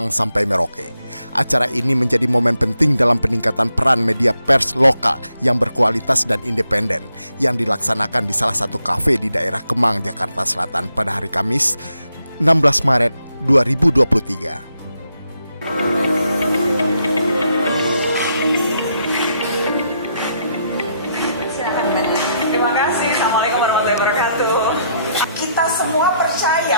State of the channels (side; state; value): both; inverted; correlation -0.78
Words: sampai Merauke. Acara ini menjadi momen penting dalam peningkatan peran media pers lokal yang berkualitas dan independen yang dilaksanakan di salah satu kafe di daerah Kemang, Jakarta Selatan pada hari Kamis 16 Maret 2023. Kita semua